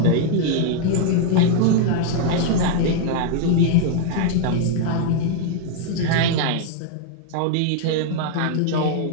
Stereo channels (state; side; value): different; both; correlation 0.00